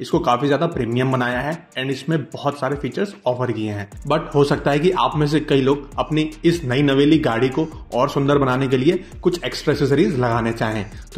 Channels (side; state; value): both; identical; correlation 1.00